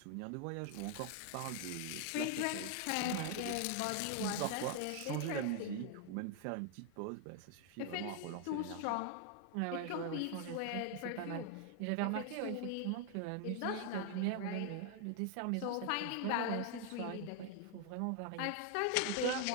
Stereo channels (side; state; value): both; different; correlation 0.00